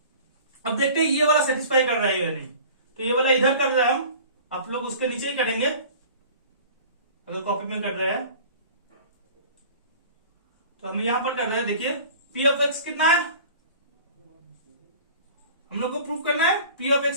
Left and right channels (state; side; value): inverted; both; correlation -0.43